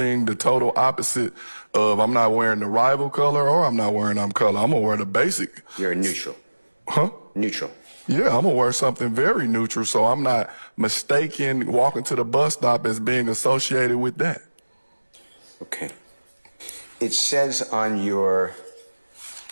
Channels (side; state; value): both; inverted; correlation -1.00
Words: the total opposite of. I'm not wearing the rival color or I'm not wearing color. I'm going to wear the basic. You're a neutral. Huh? Neutral. Yeah, I'm going to wear something very neutral so I'm not mistaken walking to the bus stop as being associated with that. Okay. It says on your